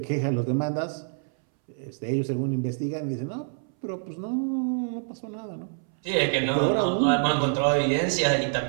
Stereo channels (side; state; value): left; silent; 60 dB below the other